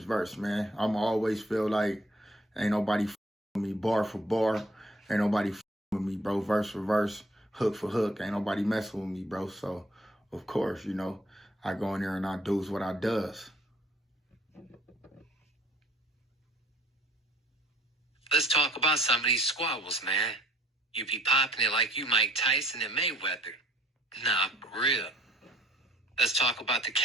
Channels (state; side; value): normal; both; correlation 0.59